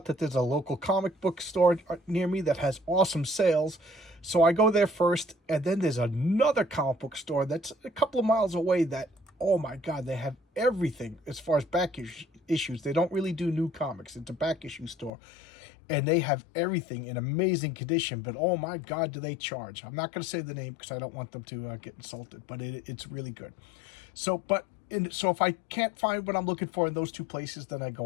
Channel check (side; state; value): right; drops out; at 15.1 s